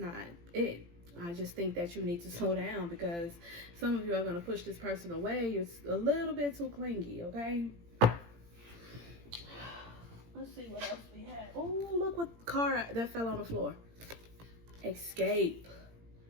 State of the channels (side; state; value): left; late; 17 ms